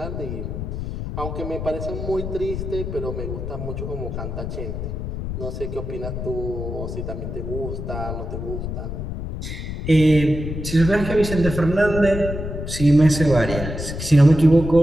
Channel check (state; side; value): noise; left; rumble, 5 dB below the sound